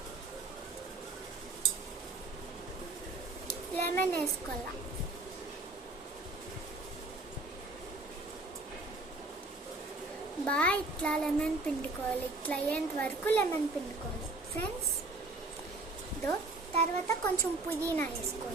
బాగా ఇట్లా లెమన్ పిండుకోవాలి. ఇట్లా అయ్యేంత వరకు లెమన్ పిండుకోవాలి ఫ్రెండ్స్. తర్వాత కొంచెం పుదీనా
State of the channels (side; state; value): left; quieter; 3.1 dB